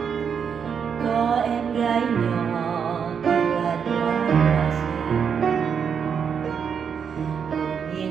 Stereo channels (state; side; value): quieter; left; 7.0 dB